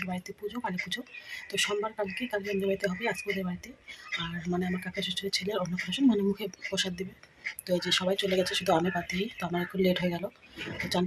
বাড়িতে পুজো, কালী পুজো। তো সোমবার কালকে আমাদের বাড়িতে হবে, আজকে ওদের বাড়িতে। আর মানে আমার কাকা শ্বশুরের ছেলের অন্নপ্রাশন, মানে মুখে প্রসাদ দেবে। তো এই যে সবাই চলে গেছে, শুধু আমি বাদ দিই। তো আমার একটু লেট হয়ে গেল। তো চান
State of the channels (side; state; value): both; identical; correlation 1.00